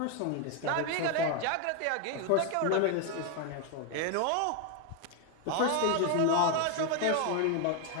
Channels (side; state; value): both; different; correlation 0.01